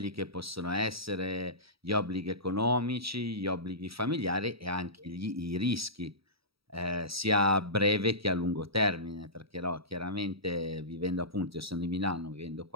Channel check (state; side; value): late; left; 0.76 ms